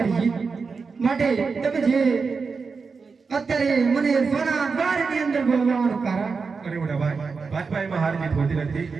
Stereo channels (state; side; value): quieter; left; 4.9 dB